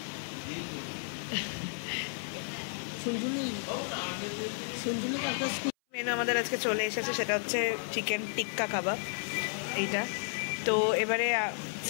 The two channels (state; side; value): silent; right; 56 dB below the other